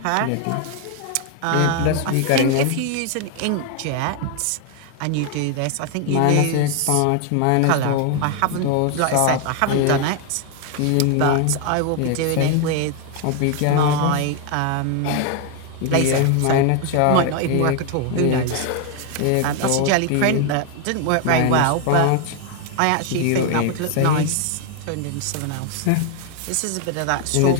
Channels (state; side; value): different; both; correlation 0.01